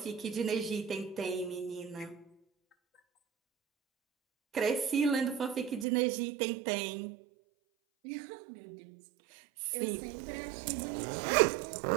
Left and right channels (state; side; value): drops out; left; at 5.9 s